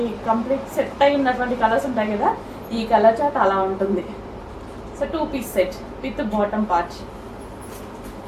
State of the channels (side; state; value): both; identical; correlation 1.00